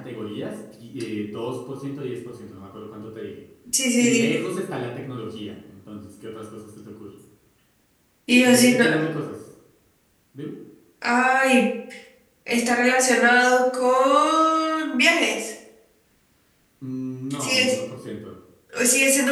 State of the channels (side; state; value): both; identical; correlation 1.00